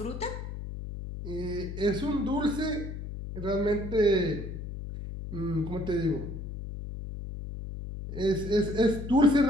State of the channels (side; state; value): left; noise; hum, 8 dB below the sound